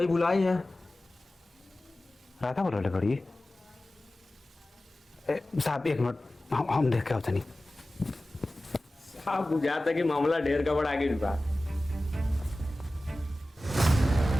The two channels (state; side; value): normal; both; correlation 0.96